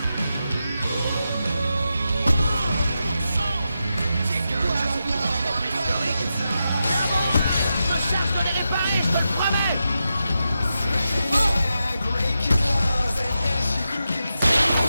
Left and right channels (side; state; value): both; inverted; correlation -0.88